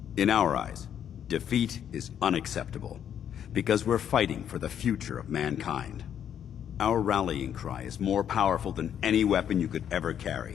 In our eyes, defeat is unacceptable, because we're fighting for the future of mankind. Our rallying cry is more powerful than any weapon you could ever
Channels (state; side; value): quieter; right; 9.3 dB